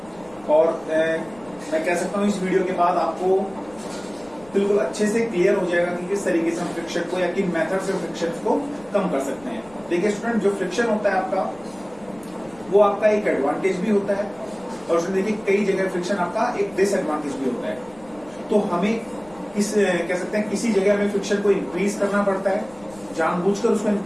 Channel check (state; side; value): noise; left; rumble, 24 dB below the sound